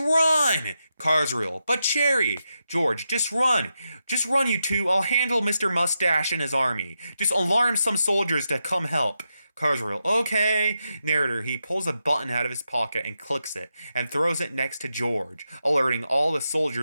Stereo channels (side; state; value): both; inverted; correlation -0.87